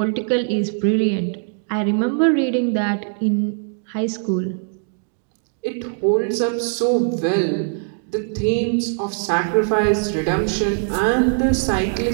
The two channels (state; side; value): silent; left; 61 dB below the other